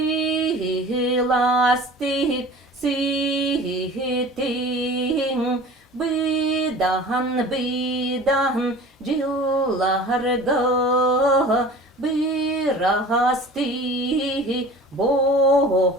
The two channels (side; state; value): both; normal; correlation 0.42